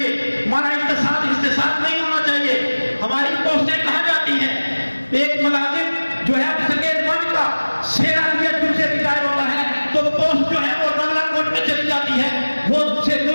ہمارا استحصال نہیں ہونا چاہیے. ہماری پوسٹیں کہاں جاتی ہیں, ایک ملازم جو ہے سکیل ون کا سیرا دیا جن سے ریٹائر ہوتا ہے تو پوسٹ جو ہے وہ بنگلہ کوٹ میں چلی جاتی ہے, وہ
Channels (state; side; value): inverted; both; correlation -1.00